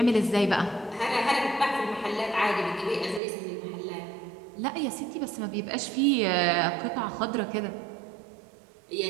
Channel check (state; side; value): drops out; left; at 3.2 s